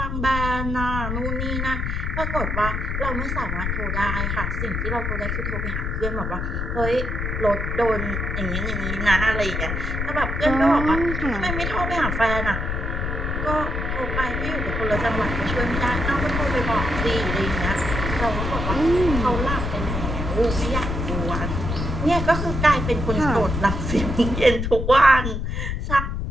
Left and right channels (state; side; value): noise; left; rumble, 2 dB below the sound